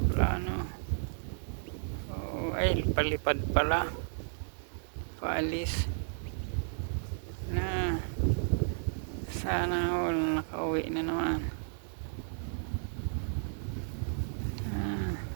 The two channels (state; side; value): silent; left; digital silence